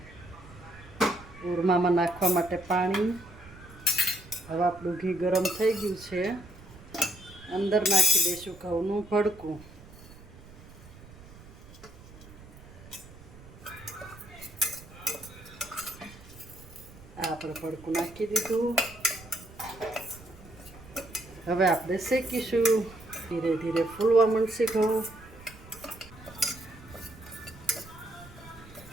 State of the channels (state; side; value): noise; right; rumble, 19 dB below the sound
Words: ઓરમામાં નાખવા માટે પાણી. હવે આપણું ઘી ગરમ થઈ ગયું છે, અંદર નાખી દઈશું ઘઉંનું ભડકું. આ આપણે ભડકું નાખી દીધું. હવે આપણે શેકીશું. ધીરે ધીરે ફૂલવા માંડશે ઘઉં.